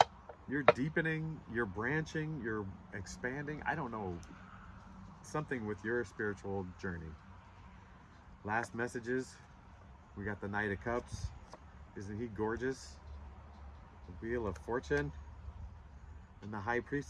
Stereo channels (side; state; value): both; identical; correlation 1.00